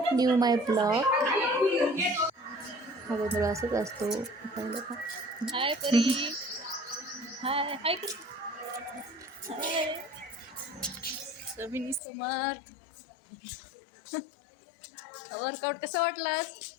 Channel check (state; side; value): drops out; right; at 12.0 s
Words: new my blog. हा गोंधळ असंच असतो. पाहिलं का. हाय परी. हाय हाय हाय समिनी समर्थ. वर्कआउट कसं वाटलं?